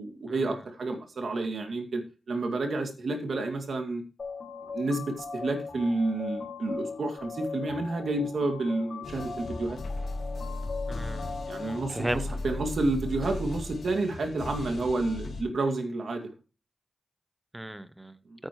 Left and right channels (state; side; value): normal; both; correlation 0.88